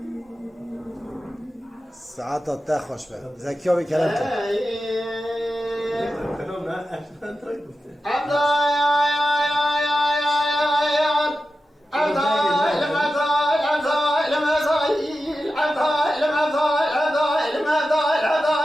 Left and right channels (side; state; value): both; normal; correlation 0.92